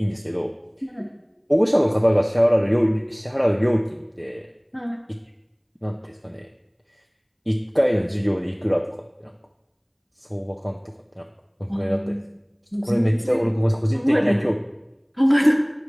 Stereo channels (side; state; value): both; identical; correlation 1.00